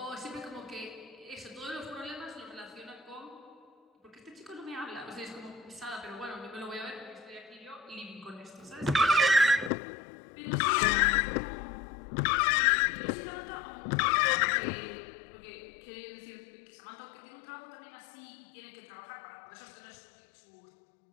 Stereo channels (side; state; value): right; drops out; at 9.7 s